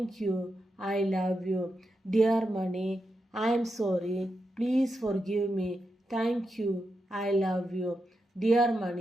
you. I love you. Dear money, I am sorry. Please forgive me. Thank you. I love you. Dear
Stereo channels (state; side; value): normal; both; correlation 0.86